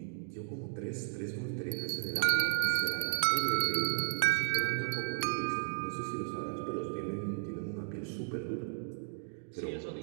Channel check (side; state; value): left; silent; digital silence